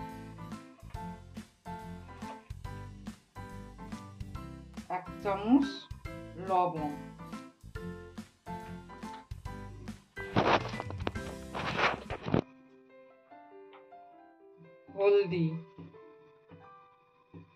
এক চামচ লবণ, হলদি,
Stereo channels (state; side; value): identical; both; correlation 1.00